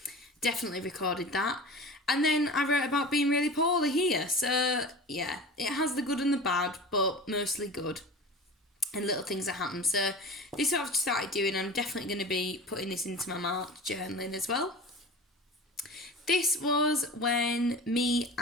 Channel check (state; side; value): normal; both; correlation 0.35